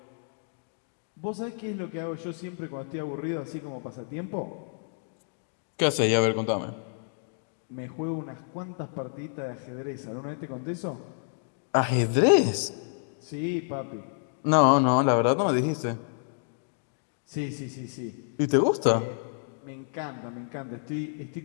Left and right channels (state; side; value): silent; right; digital silence